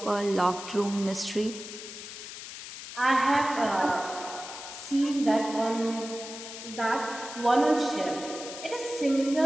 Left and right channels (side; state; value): left; noise; hiss, 11 dB below the sound